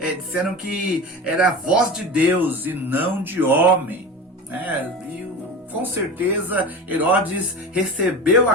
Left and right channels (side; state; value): both; normal; correlation 0.30